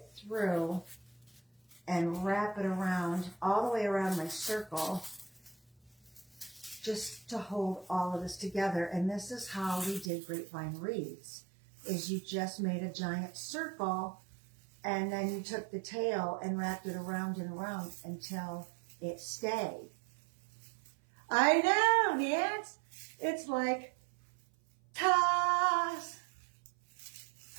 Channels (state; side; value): drops out; left; at 10.1 s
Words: through and wrap it around, all the way around my circle, just to hold all of this together. And this is how we did grapevine wreaths, is you just made a giant circle, and then you took the tail and wrapped it around and around until it stayed. I know, yes. It's like, toss.